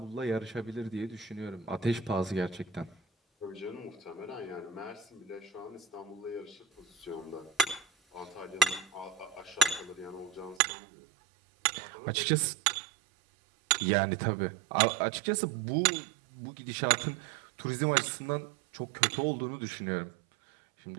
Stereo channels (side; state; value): left; drops out; at 10.6 s